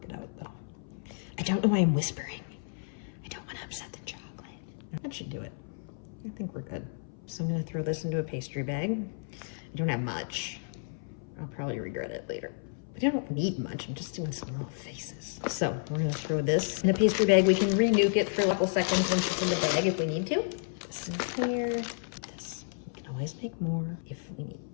it out though. I don't know why I'm whispering. I don't want to upset the chocolate. That should do it. I think we're good. So I'm gonna throw this into a pastry bag. I don't have much. I'll probably regret it later. But I don't need much. I'm just doing some little faces. So we're gonna throw this in a pastry bag. We can re-nuke it for a couple seconds once it's in the bag if we need to. This in here. This. We can always make more if we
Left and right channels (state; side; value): silent; right; 57 dB below the other